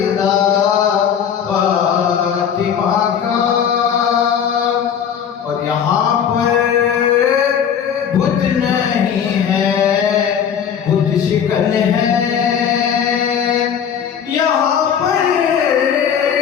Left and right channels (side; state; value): right; quieter; 8.1 dB